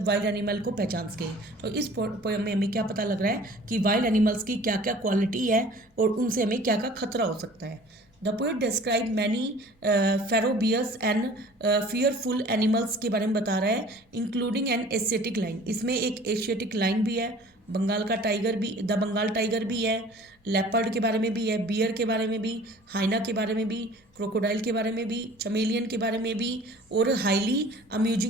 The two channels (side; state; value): both; normal; correlation 0.48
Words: वाइल्ड एनिमल को पहचान सकें। तो इस पोयम में हमें क्या पता लग रहा है कि वाइल्ड एनिमल्स की क्या क्या क्वालिटी है और उनसे हमें क्या क्या खतरा हो सकता है। The poet describe many ferocious and fearful animals के बारे में बता रहा है, इंक्लूडिंग एन एशियाटिक लाइन। इसमें एक एशियाटिक लाइन भी है, बंगाल का टाइगर भी, द बंगाल टाइगर भी है, लेपर्ड के बारे में भी है, बियर के बारे में भी, हाइना के बारे में भी, क्रोकोडाइल के बारे में भी, चमेलियन के बारे में भी, और हाईली